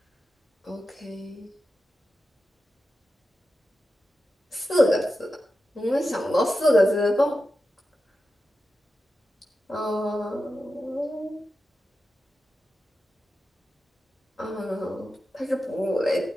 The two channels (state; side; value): normal; both; correlation 0.91